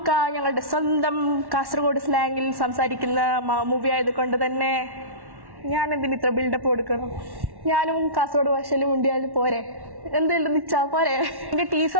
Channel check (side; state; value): left; late; 1.1 ms